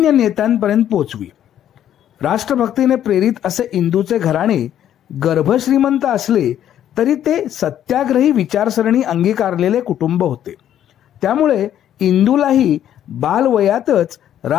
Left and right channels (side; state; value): right; quieter; 10.8 dB